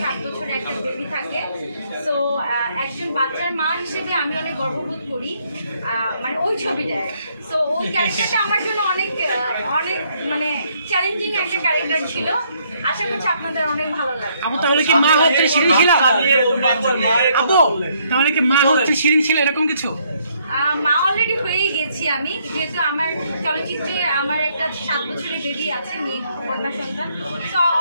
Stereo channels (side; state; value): both; inverted; correlation -0.70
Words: 7 বছর একটা বেবি থাকে। সো একজন বাচ্চার মা হিসেবে আমি অনেক গর্ববোধ করি মানে ওই ছবিটায়। সো ওই ক্যারেক্টারটা আমার জন্য অনেক অনেক মানে চ্যালেঞ্জিং একটা ক্যারেক্টার ছিল। আশা করছি আপনাদের অনেক ভালো লাগে। আপু তাহলে কি মা হচ্ছে শিরিন শিলা? আপু তাহলে কি মা হচ্ছে শিরিন শিলা এরকম কিছু? মা অলরেডি হয়ে গেছি আমি, যেহেতু আমার চলচ্চিত্রে আমার একটা 7 বছরের বেবি আছে, মেয়ে কন্যা সন্তান। তো